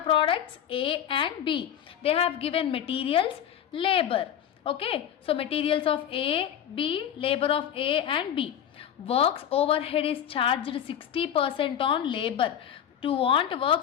A and B. They have given materials, labor. Okay, so materials of A, B, labor of A and B. Works overhead is charged 60% on labor. To want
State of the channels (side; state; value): right; quieter; 9.6 dB